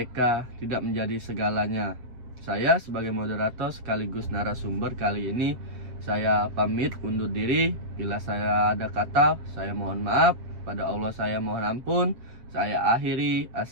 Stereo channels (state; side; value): late; left; 8.2 ms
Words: tidak menjadi segalanya. Saya sebagai moderator sekaligus narasumber kali ini, saya pamit undur diri. Bila saya ada kata, saya mohon maaf. Pada Allah saya mohon ampun. Saya akhiri.